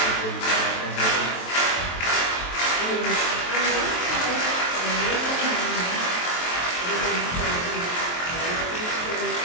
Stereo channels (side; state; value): right; late; 23 ms